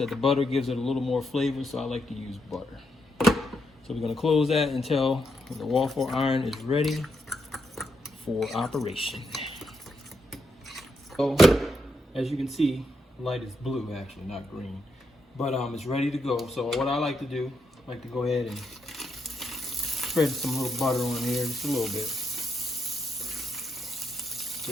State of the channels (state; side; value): normal; both; correlation 0.81